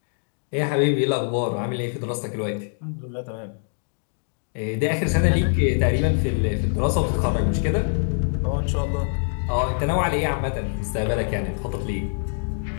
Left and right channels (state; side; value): silent; right; 62 dB below the other